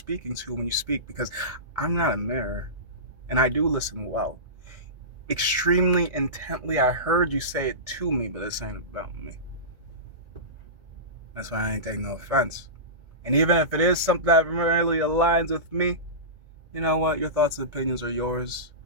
to when you speak, because I'm not a mirror. And I do listen well. Extremely intently, I heard you say it to me, but this ain't about me. That's why I ain't taking no offense. And even if it is something that really aligns with me, you know what? Your thoughts and opinions are yours,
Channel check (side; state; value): left; late; 1.9 ms